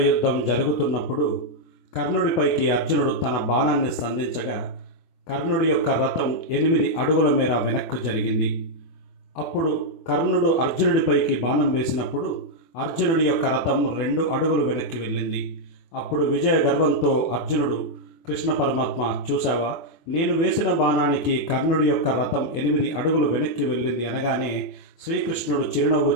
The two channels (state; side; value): late; right; 24 ms